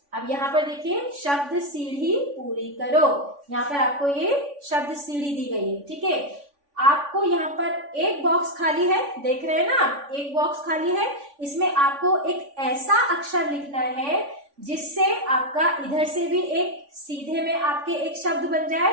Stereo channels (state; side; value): late; left; 3.5 ms